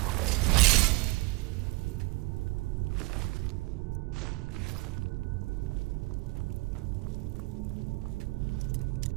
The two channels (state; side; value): quieter; left; 24.2 dB